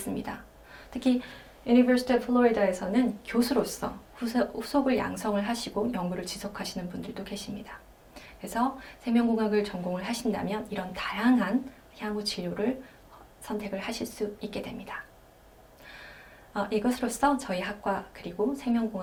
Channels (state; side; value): identical; both; correlation 1.00